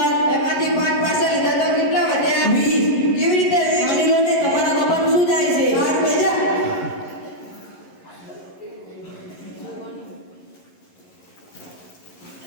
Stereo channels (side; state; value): right; late; 11 ms